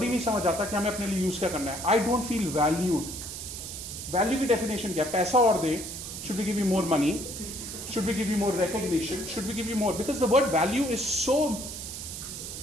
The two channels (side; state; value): right; noise; hiss, 8 dB below the sound